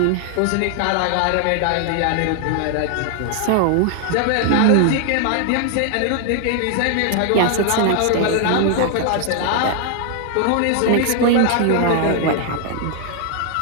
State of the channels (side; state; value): both; different; correlation 0.00